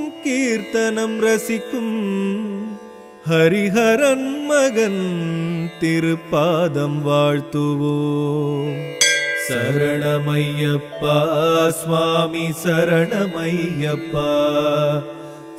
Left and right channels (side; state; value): both; identical; correlation 1.00